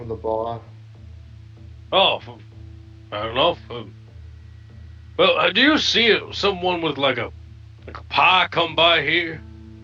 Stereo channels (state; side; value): identical; both; correlation 1.00